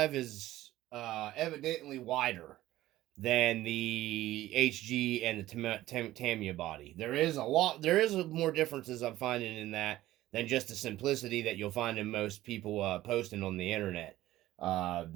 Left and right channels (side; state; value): left; quieter; 15.4 dB